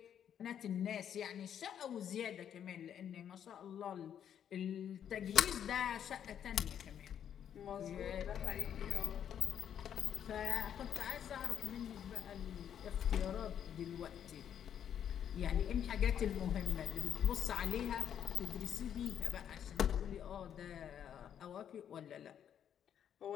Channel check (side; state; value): right; quieter; 9.2 dB